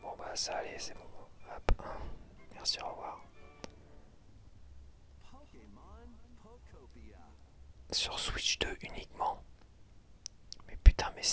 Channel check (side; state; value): both; identical; correlation 1.00